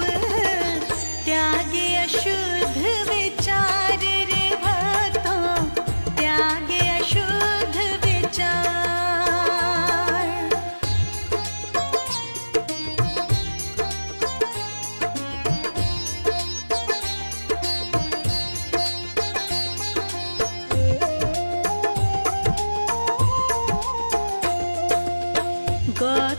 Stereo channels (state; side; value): inverted; both; correlation -1.00